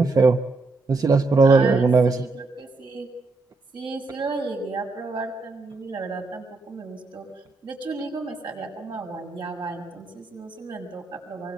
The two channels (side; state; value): left; quieter; 3.6 dB